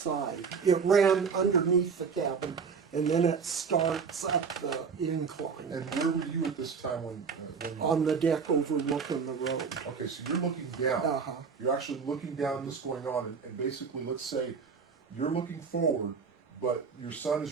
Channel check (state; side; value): quieter; left; 5.7 dB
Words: It ran underneath the cabin, and then it starts up the incline And where were you at this time when on the deck overlooking the road. okay, so you're looking down. Uh-huh. You're actually looking down at what's going on, and basically, let's say you're looking forward, but your son